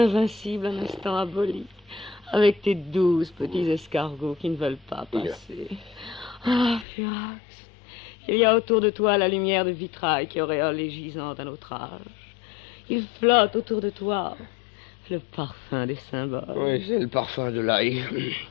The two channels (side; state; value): right; drops out; at 6.9 s